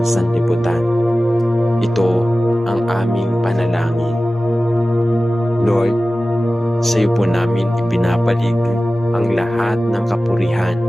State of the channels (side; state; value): both; normal; correlation 0.96